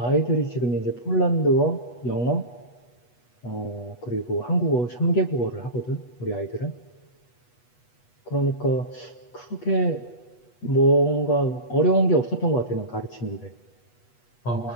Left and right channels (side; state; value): right; late; 8.2 ms